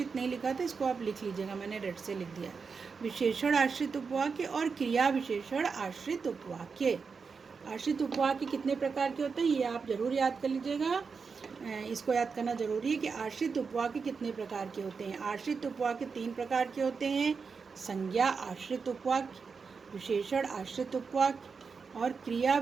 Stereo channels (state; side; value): quieter; left; 5.3 dB